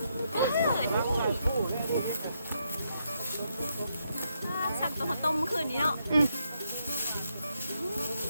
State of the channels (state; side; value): inverted; both; correlation -0.78